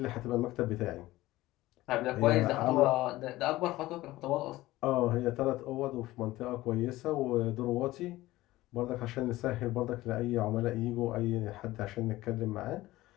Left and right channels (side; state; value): right; quieter; 17.4 dB